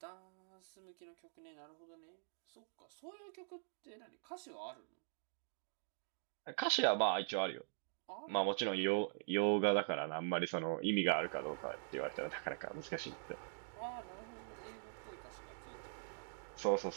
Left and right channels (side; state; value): left; silent; digital silence